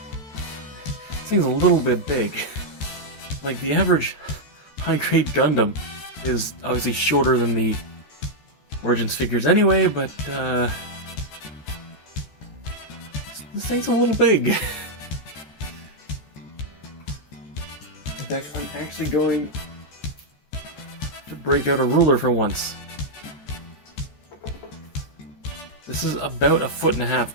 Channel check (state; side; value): late; right; 14 ms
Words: thing's a little bit big. Like, the average high-grade Gundam is obviously shorter than the Origins figures anyway, but this thing's a little big. In fact, I'm actually going to break out a ruler for once. This is about 1.5 feet